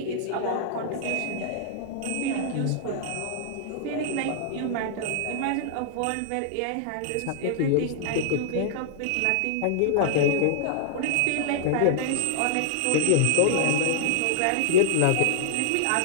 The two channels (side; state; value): both; different; correlation -0.01